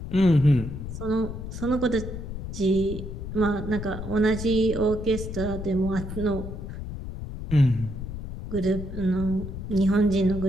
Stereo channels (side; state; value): left; noise; rumble, 7 dB below the sound